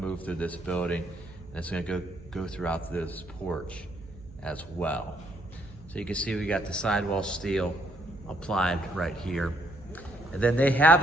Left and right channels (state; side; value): noise; right; hum, 19 dB below the sound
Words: through this building, and it's going to go throughout this porch as well. So you can see we got the sidewall steel applied right here. And then they